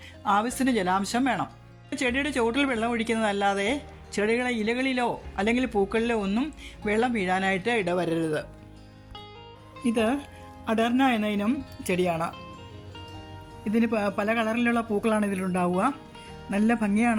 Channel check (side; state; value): both; identical; correlation 1.00